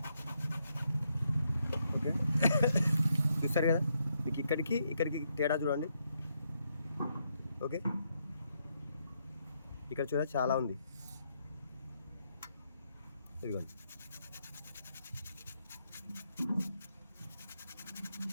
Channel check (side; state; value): both; inverted; correlation -0.78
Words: ఓకే, చూస్తారు కదా, మీకు ఇక్కడికి తేడా చూడండి. ఓకే, ఇక్కడ చూడ చాలా ఉంది. ఇదిగోండి,